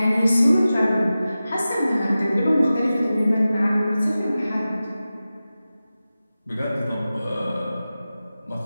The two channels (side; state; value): both; inverted; correlation -0.95